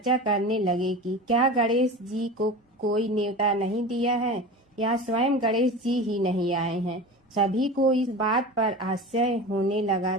करने लगे कि क्या गणेश जी को कोई न्योता नहीं दिया है या स्वयं गणेश जी ही नहीं आए हैं। सभी को इस बात पर आश्चर्य होने लगा।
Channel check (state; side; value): normal; both; correlation 0.31